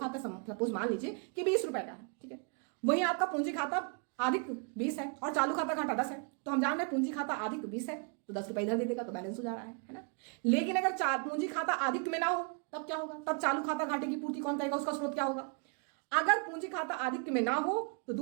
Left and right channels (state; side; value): quieter; left; 39.8 dB